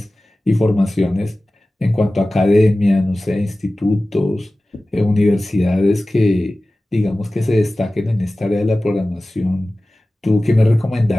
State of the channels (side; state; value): both; normal; correlation 0.97